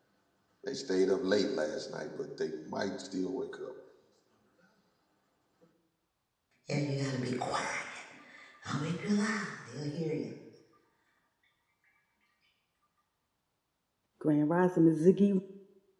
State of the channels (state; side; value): identical; both; correlation 1.00